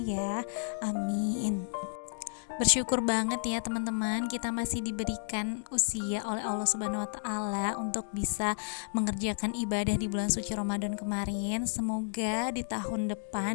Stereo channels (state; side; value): silent; right; digital silence